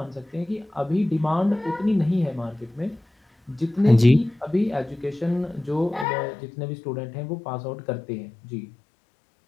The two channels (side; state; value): right; drops out; at 6.1 s